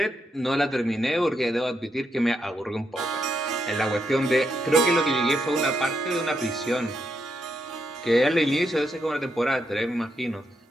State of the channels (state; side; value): normal; both; correlation 0.81